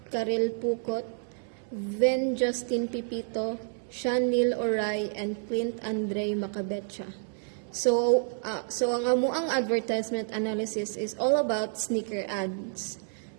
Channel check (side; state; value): left; silent; 58 dB below the other